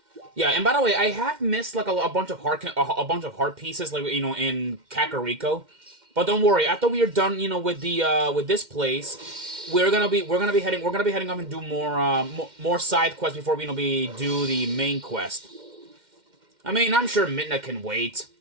Yeah, and by the way, I have missed like a bunch of heart pieces, like in Kakariko. But don't worry, after we are done, with this place, we're gonna be heading up and do more side quests before we do the main quest. I mean, I'm sure Midna can wait.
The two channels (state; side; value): late; left; 2.1 ms